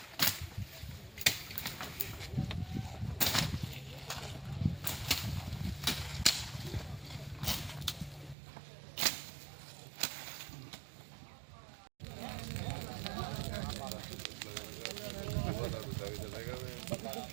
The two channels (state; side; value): drops out; left; at 8.3 s